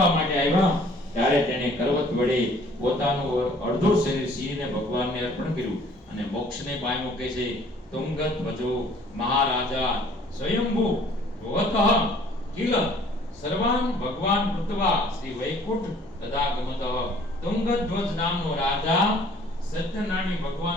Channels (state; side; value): normal; both; correlation 0.55